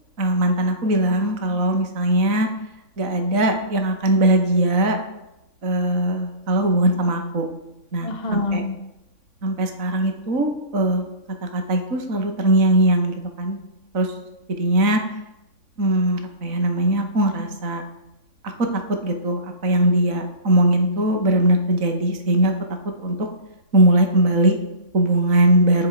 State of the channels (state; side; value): late; left; 3.5 ms